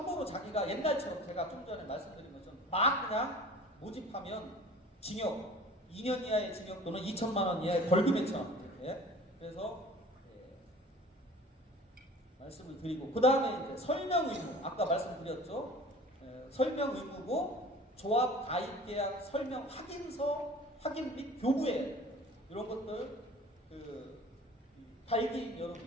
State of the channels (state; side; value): normal; both; correlation 0.44